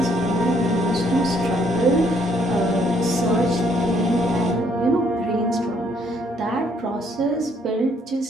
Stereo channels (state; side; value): normal; both; correlation 0.68